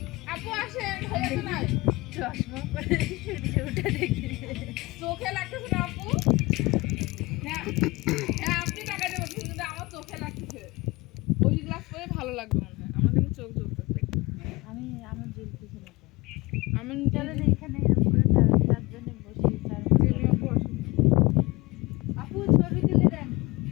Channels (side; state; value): right; quieter; 22.6 dB